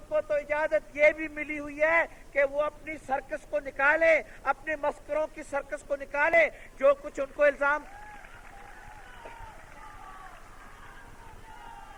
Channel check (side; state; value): both; identical; correlation 1.00